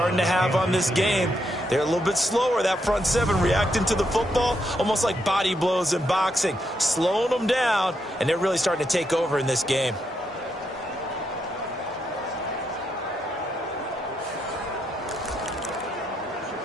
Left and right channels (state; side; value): normal; both; correlation 0.79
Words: to have on this game. They're a little bit slower, that front seven, reacting to the football, almost like body blows in boxing, slowing them down, and they're really starting to take over in this game.